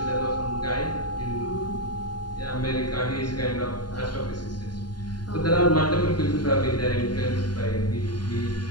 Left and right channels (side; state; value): right; late; 0.70 ms